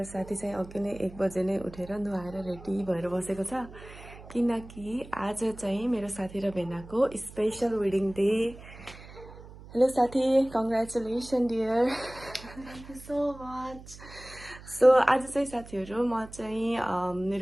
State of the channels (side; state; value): right; noise; hum, 17 dB below the sound